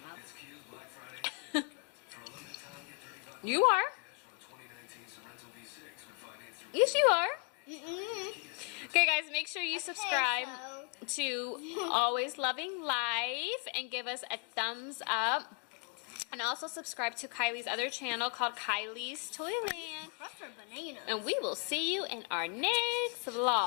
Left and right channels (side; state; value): right; quieter; 33.7 dB